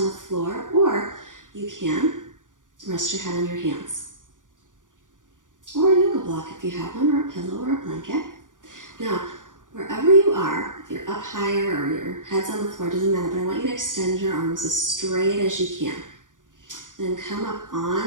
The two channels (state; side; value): late; left; 0.88 ms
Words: the floor, or you can rest your head on your hands. Or a yoga block if you have one, or a pillow or a blanket. Now, wherever you are, if you're up higher or your head's on the floor, doesn't matter, but I want you to extend your arms as straight as you can. Then come up